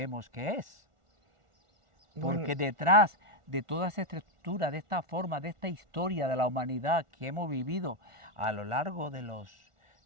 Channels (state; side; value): late; left; 1.4 ms